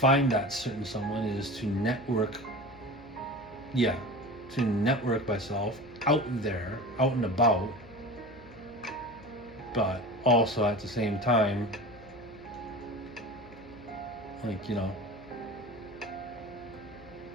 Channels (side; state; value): left; noise; hum, 21 dB below the sound